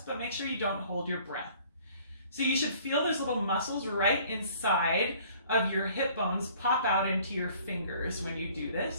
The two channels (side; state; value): both; inverted; correlation -0.55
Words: but make sure you don't hold your breath. So you should feel those little muscles right inside of your hip bones pop out into your fingers when you do